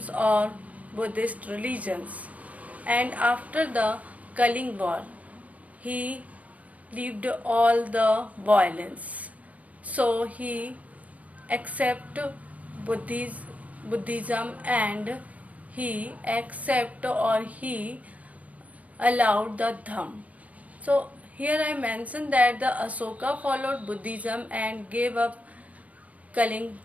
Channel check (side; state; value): left; late; 0.070 ms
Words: or Buddhist religions, and after the Kaling War, he left all the violence. So he accepted Buddhism and he he allowed the Dham. So here I mentioned that the Asoka followed Buddhism and gave up Kaling